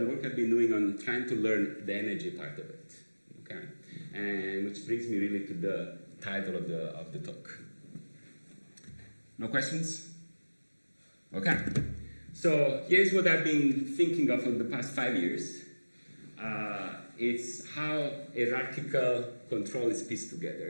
work I've been doing on trying to learn the energy part of it. Okay, and which brings me really to the title of the talk. No questions? Okay. So here's what I've been thinking of for the past 5 years. It's how hierarchical control is pieced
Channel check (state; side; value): inverted; both; correlation -1.00